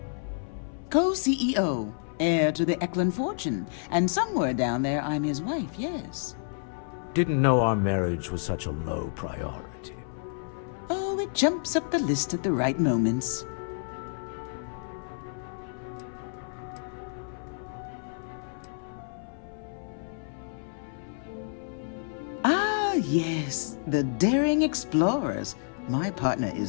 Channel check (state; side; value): silent; right; 58 dB below the other